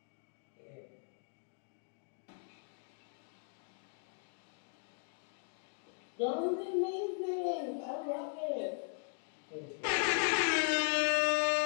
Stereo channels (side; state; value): right; silent; 52 dB below the other